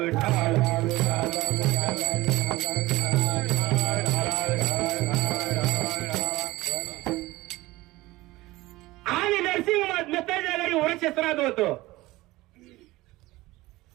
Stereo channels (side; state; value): left; quieter; 19.1 dB